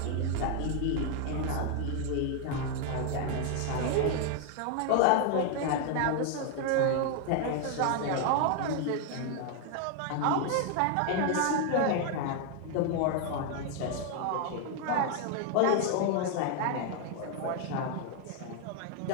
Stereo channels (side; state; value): both; different; correlation 0.00